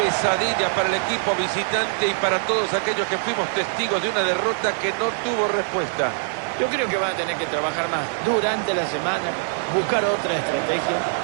para el equipo visitante y para todos aquellos que fuimos testigos de una derrota que no tuvo respuesta. Yo creo que van a tener que trabajar más durante la semana, buscar otra estrategia,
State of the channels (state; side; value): silent; left; digital silence